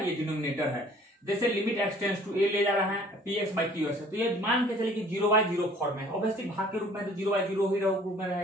ये डिनोमिनेटर है। जैसे limit x tends to a ले जा रहा है px/qx है, तो ये मान के चलिए कि 0/0 फॉर्म में है, ऑब्वियसली भाग के रूप में तो 0/0 ही रूप में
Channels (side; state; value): both; normal; correlation 0.53